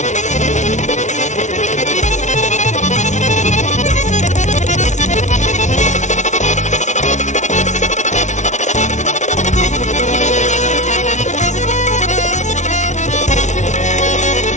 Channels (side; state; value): right; late; 0.35 ms